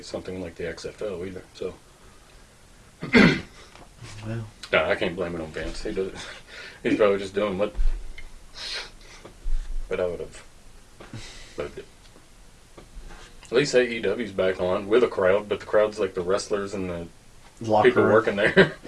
something like the XFL either. So, Well, no, I can't blame it on Vince. He does. He's probably just doing what I would have. But at least AEW's back on with a crowd, but the crowd's like the wrestlers and the locker people room. working there.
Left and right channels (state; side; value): identical; both; correlation 1.00